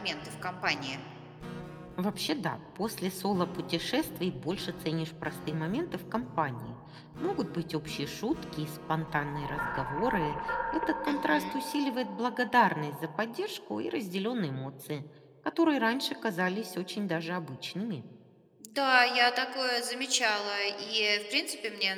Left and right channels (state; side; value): identical; both; correlation 1.00